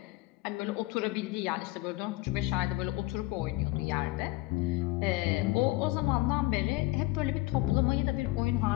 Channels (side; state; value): right; quieter; 20.2 dB